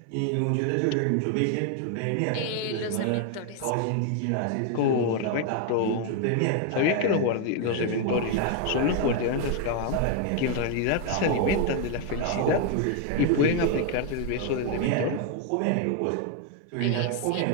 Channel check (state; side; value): different; both; correlation 0.00